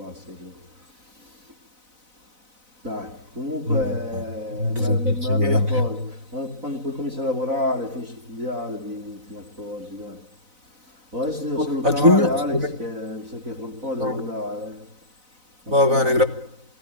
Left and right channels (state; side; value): late; left; 4.0 ms